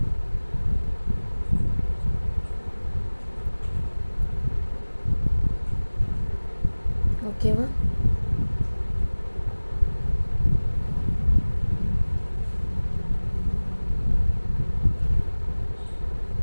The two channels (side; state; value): both; inverted; correlation -1.00